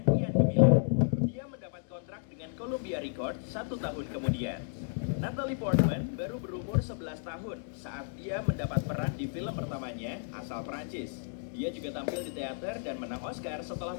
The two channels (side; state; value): right; silent; digital silence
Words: kian gemilang. Dia mendapat kontrak dengan Columbia Records 1 tahun kemudian. Natalie Portman baru berumur 11 tahun saat dia mendapat peran di film pertamanya asal Prancis. Dia juga tampil di teater dan menang Oscar setelah